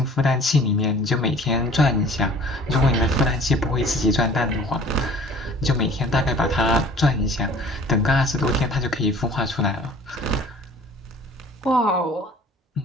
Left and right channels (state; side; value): normal; both; correlation 0.49